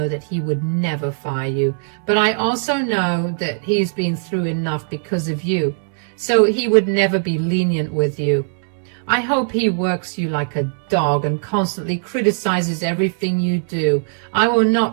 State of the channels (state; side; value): silent; left; 66 dB below the other